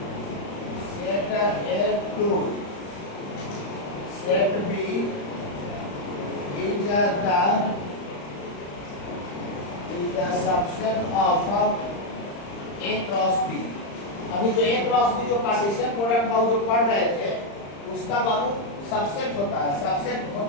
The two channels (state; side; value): late; right; 35 ms